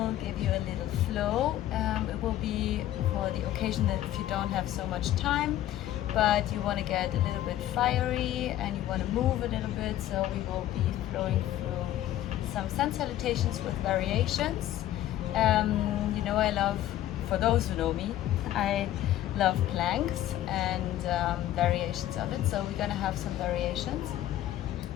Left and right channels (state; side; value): quieter; right; 13.2 dB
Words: give you a little flow. It will be for the occasion that if you don't have so much time but you want to get a little bit fiery and you want to move a little bit, so we will be flowing through some sun salutations with variations. You know, I love, for those who know me, I love planks and variations of it, so we're gonna have some variations.